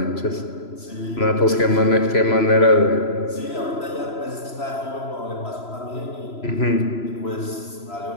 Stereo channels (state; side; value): late; right; 3.0 ms